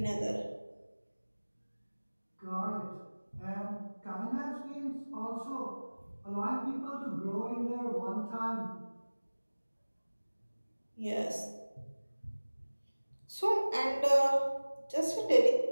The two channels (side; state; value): both; inverted; correlation -1.00